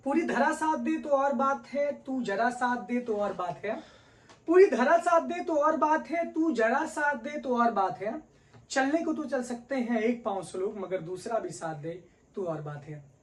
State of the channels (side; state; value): both; identical; correlation 1.00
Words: पूरी धरा साथ दे तो और बात है, तू जरा साथ दे तो और बात है। पूरी धरा साथ दे तो और बात है, तू जरा साथ दे तो और बात है। चलने को तो चल सकते हैं एक पांव से लोग, मगर दूसरा भी साथ दे तो और बात है।